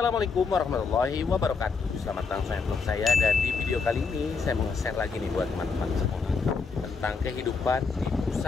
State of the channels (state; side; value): quieter; right; 4.9 dB